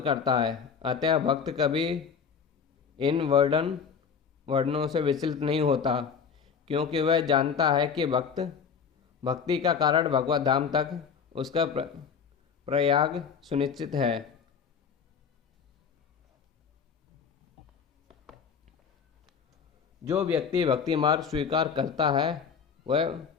करता है। अतः भक्त कभी इन वर्णों से विचलित नहीं होता, क्योंकि वह जानता है कि भक्ति का कारण भगवत धाम तक उसका प्रयाग सुनिश्चित है। जो व्यक्ति भक्ति मार्ग स्वीकार करता है वह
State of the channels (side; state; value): right; quieter; 6.5 dB